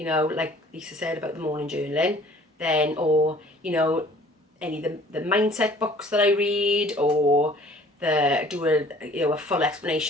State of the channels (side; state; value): both; normal; correlation 0.53